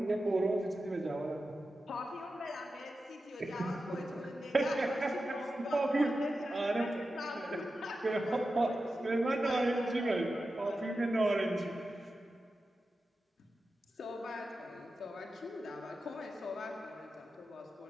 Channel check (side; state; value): both; normal; correlation 0.92